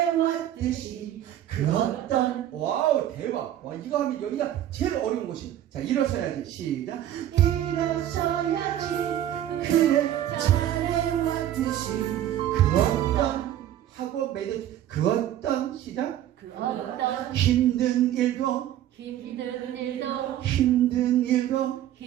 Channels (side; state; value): left; quieter; 12.0 dB